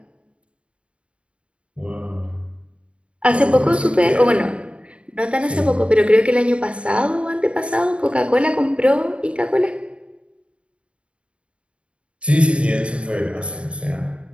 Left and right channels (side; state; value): left; late; 0.058 ms